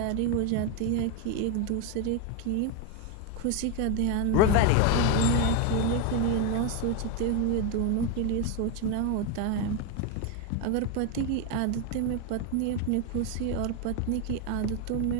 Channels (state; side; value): different; both; correlation 0.02